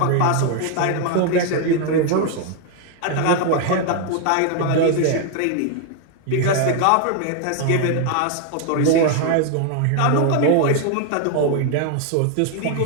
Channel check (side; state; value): both; different; correlation 0.00